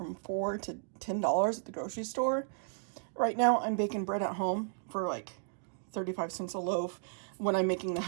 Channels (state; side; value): silent; left; digital silence